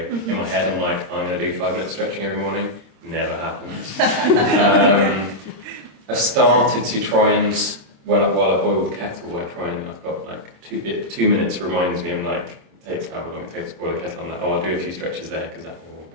my head I'm like, I'm going to do 5 minutes stretching every morning. Never happens. I've started to try and, while I boil the kettle, I've got like 2 minutes reminds me, I'm like, it takes however long it takes to boil the kettle, I'm like, I'll do a few stretches there, because that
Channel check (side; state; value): left; late; 26 ms